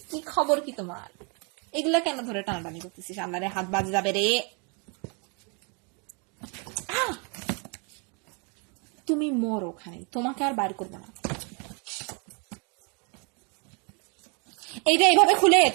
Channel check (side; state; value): left; quieter; 34.9 dB